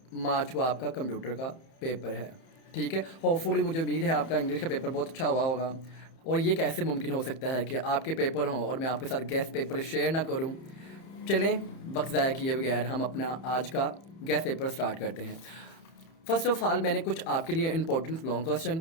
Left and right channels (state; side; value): late; right; 31 ms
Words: मार्च को आपका कंप्यूटर का पेपर है। ठीक है, होपफुली मुझे उम्मीद है आपका इंग्लिश का पेपर बहुत अच्छा हुआ होगा। और ये कैसे मुमकिन हो सकता है कि आपके पेपर हों और मैं आपके साथ गेस्ट पेपर शेयर ना करूं। चलें, वक्त ज़ाया किए बगैर हम अपना आज का गेस्ट पेपर स्टार्ट करते हैं। फर्स्ट ऑफ ऑल मैंने कुछ आपके लिए इंपॉर्टेंट लॉन्ग क्वेश्चन